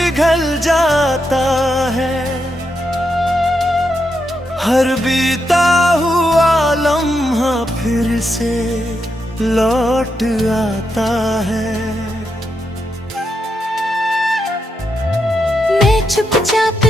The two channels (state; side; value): normal; both; correlation 0.83